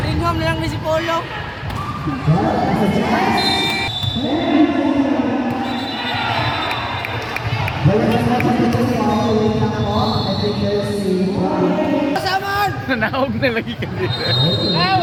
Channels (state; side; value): identical; both; correlation 1.00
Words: home na lang ni si Polo. Kasamaan! Nanaog na lagi ka dito. Ah,